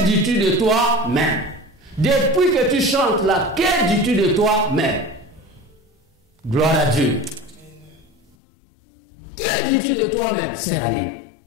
dis-tu de toi-même? Depuis que tu chantes là, que dis-tu de toi-même? Gloire à Dieu. Que dis-tu de toi-même? C'est la ligne.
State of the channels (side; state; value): right; drops out; at 8.3 s